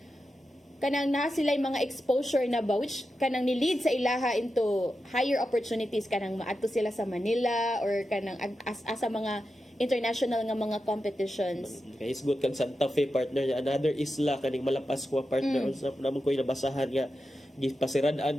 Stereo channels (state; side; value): normal; both; correlation 0.90